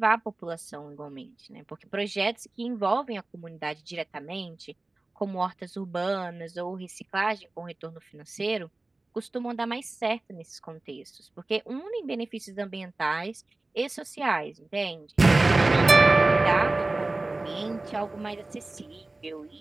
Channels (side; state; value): left; quieter; 3.0 dB